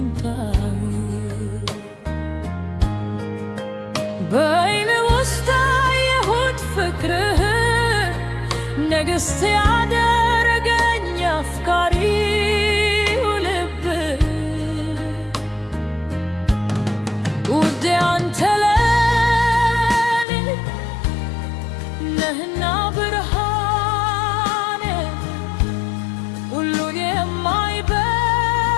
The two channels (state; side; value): drops out; right; at 20.2 s